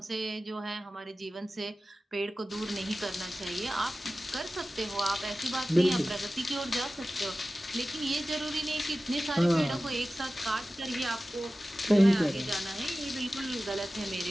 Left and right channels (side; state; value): both; normal; correlation 0.95